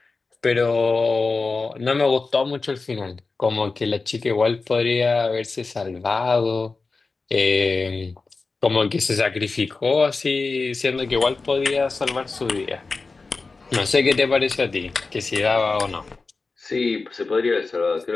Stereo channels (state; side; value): quieter; right; 4.0 dB